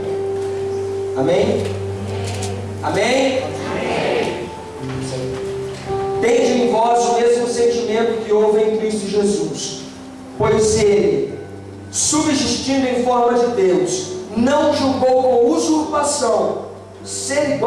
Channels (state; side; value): identical; both; correlation 1.00